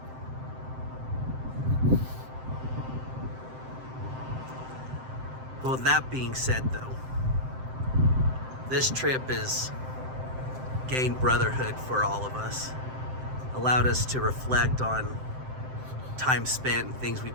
Well, with that being said, though, this trip has gained brotherhood for all of us, allowed us to reflect on time spent and things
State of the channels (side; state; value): left; late; 7.7 ms